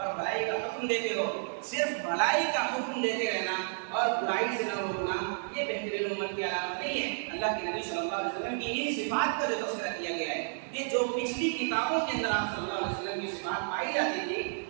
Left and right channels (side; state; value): left; silent; digital silence